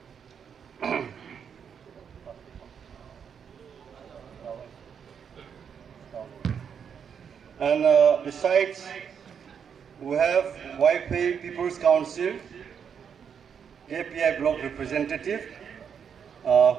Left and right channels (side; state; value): left; quieter; 7.3 dB